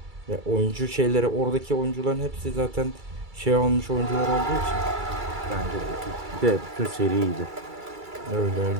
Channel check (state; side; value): late; left; 2.3 ms